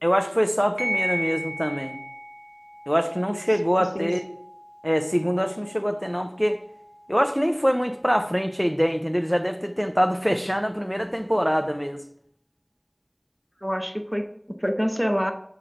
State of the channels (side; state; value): both; identical; correlation 1.00